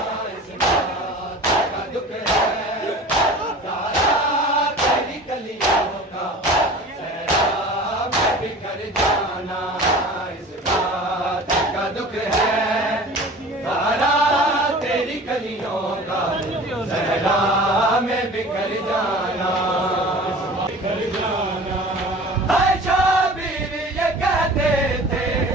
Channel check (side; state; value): both; normal; correlation 0.41